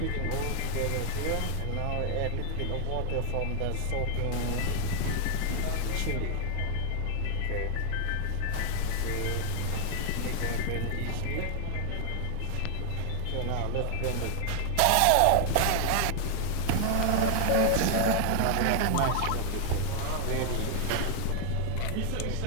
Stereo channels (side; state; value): both; different; correlation 0.00